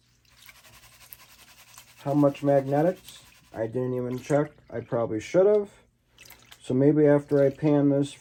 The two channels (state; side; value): identical; both; correlation 1.00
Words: How much magnetics? I didn't even check. I probably should have. So maybe after I pan this